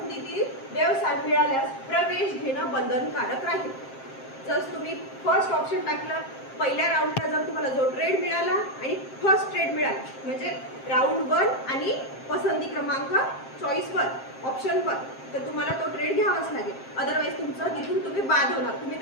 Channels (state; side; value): late; right; 7.5 ms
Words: व्यवसाय मिळाल्यास प्रवेश घेणं बंधनकारक राहील. जर तुम्ही फर्स्ट ऑप्शन टाकलं, पहिल्या राऊंडला जर तुम्हाला जो ट्रेड मिळाला आणि फर्स्ट ट्रेड मिळाला म्हणजे राऊंड 1 आणि पसंती क्रमांक चॉईस 1 ऑप्शन 1 तर तुम्हाला तो ट्रेड घ्यावाच लागेल. अदरवाईज तुमचं तिथून तुम्ही बाद होणार, तुम्ही